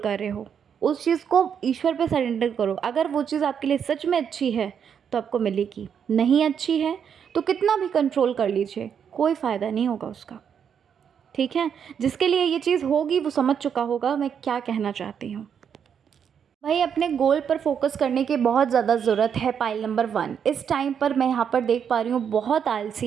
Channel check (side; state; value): left; quieter; 7.7 dB